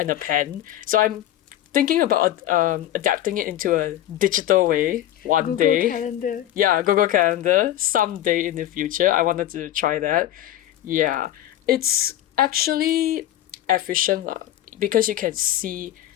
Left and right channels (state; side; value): quieter; right; 12.9 dB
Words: a pen. So I'm thinking about adapting it into a digital way one Google day. Calendar. Yeah, Google Calendar someday in the future. I wanted to try that. Yeah, it's actually efficient lah, because you can see